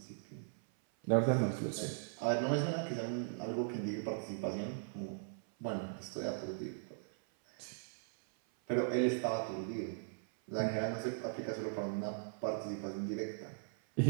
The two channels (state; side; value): silent; left; 52 dB below the other